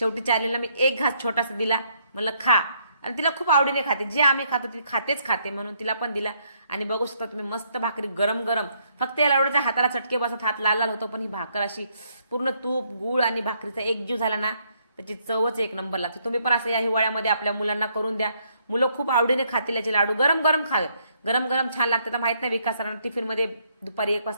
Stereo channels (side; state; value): both; inverted; correlation -0.71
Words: चार्लीला मी एक घास छोटासा दिला, म्हणलं खा. आणि तिला खूप आवडीने खाते, जे आम्ही खातो ती खातेच खाते, म्हणून तिला पण दिला. आणि बघू शकता तुम्ही, मस्त भाकरी गरम गरम. फक्त याला एवढं हाताला चटके बसत, हात लाल लाल होतो, पण ही भाकर अशी पूर्ण तूप गूळ आणि भाकरीचा एकजीव झाला ना, त्याची चवच एक नंबर लागते. तुम्ही पण असं या हिवाळ्यामध्ये आपल्या मुलांना करून द्या. मुलं खूप आवडीने खातील याचे लाडू. गरम गरम खावे, गरम गरम छान लागते. तर माहित नाही विकास सरांना टिफिनमध्ये दुपारी 1